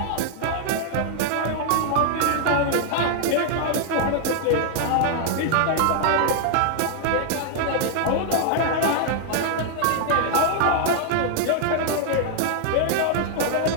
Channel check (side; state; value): both; different; correlation 0.00